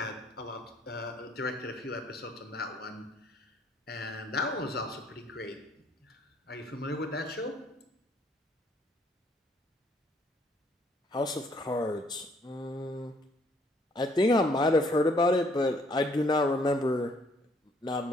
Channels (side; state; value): both; normal; correlation 0.65